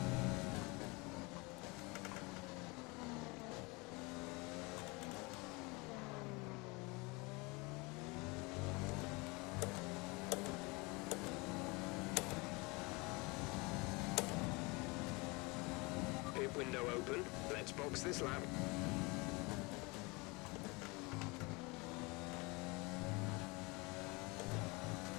Pit window open. Let's box this lap.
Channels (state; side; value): quieter; right; 26.5 dB